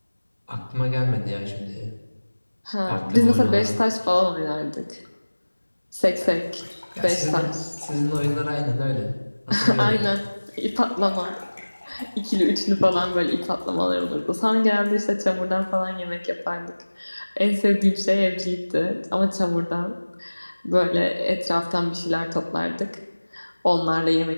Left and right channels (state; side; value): inverted; both; correlation -1.00